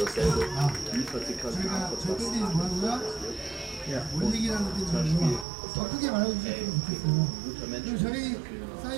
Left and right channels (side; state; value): left; drops out; at 5.5 s